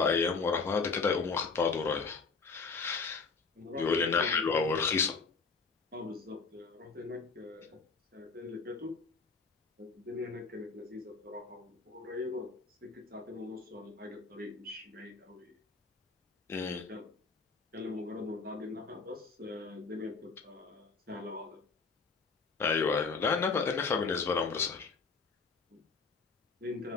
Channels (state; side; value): quieter; right; 4.8 dB